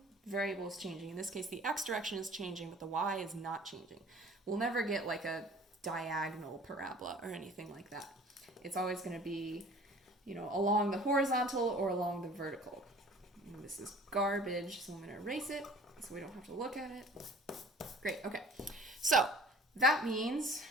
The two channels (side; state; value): both; normal; correlation 0.48